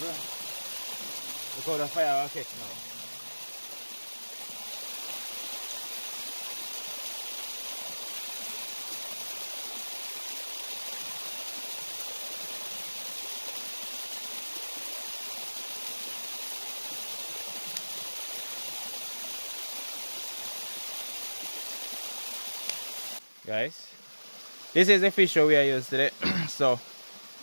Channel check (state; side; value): inverted; both; correlation -1.00